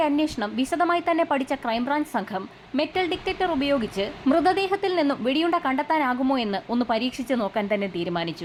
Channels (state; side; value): identical; both; correlation 1.00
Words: അന്വേഷണം വിശദമായി തന്നെ പഠിച്ച ക്രൈംബ്രാഞ്ച് സംഘം മെറ്റൽ ഡിറ്റക്ടർ ഉപയോഗിച്ച് മൃതദേഹത്തിൽ നിന്നും വെടിയുണ്ട കണ്ടെത്താനാകുമോ എന്ന് ഒന്ന് പരീക്ഷിച്ച് നോക്കാൻ തന്നെ